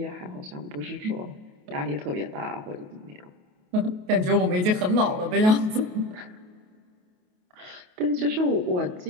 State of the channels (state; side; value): late; left; 28 ms